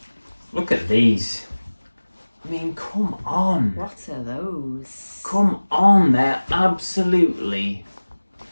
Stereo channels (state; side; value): inverted; both; correlation -1.00